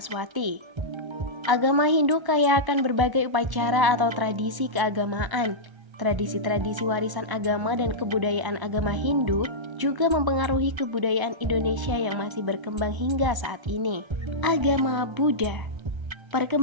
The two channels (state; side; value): late; left; 1.0 ms